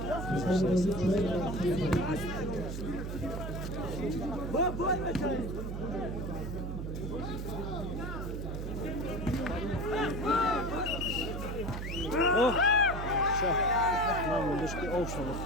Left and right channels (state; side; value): noise; right; hum, 5 dB below the sound